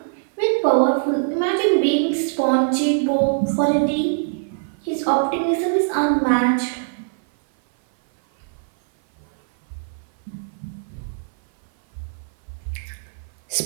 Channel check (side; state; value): left; silent; 57 dB below the other